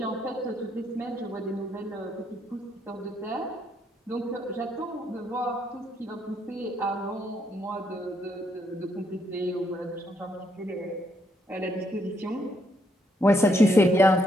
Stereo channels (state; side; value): normal; both; correlation 0.74